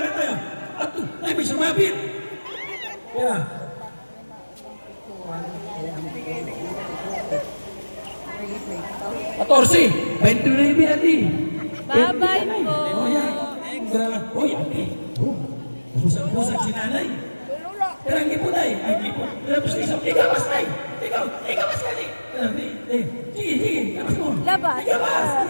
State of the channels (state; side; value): inverted; both; correlation -1.00